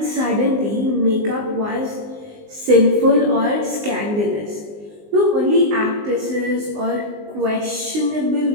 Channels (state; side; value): late; left; 19 ms